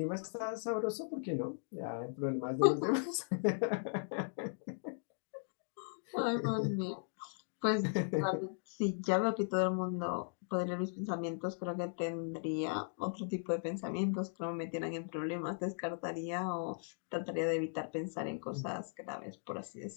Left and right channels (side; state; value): right; silent; digital silence